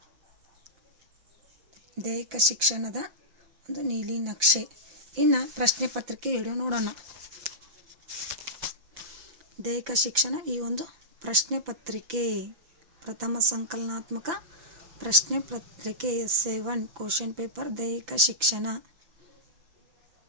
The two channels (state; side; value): late; left; 5.9 ms